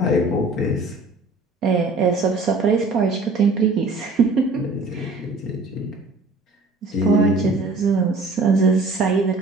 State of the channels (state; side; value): quieter; left; 3.2 dB